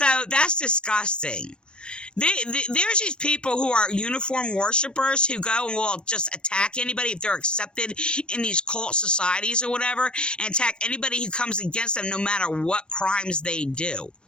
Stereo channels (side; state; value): right; late; 0.055 ms